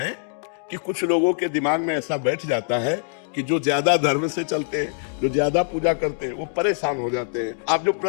कि कुछ लोगों के दिमाग में ऐसा बैठ जाता है कि जो ज्यादा धर्म से चलते हैं, जो ज्यादा पूजा करते हैं, वो परेशान हो जाते हैं। आप जो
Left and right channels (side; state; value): right; silent; digital silence